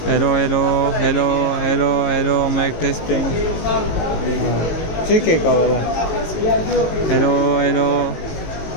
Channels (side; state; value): right; late; 19 ms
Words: Hello hello hello hello hello, mike testing. ठीक है का वाला। हेलो हेलो,